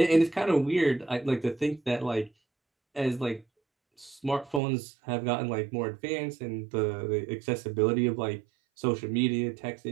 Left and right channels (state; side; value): drops out; left; at 4.6 s